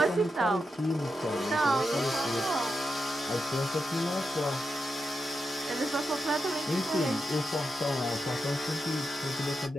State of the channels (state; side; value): normal; both; correlation 0.87